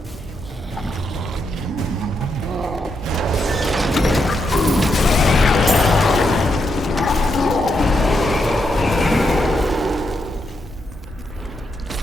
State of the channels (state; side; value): normal; both; correlation 0.81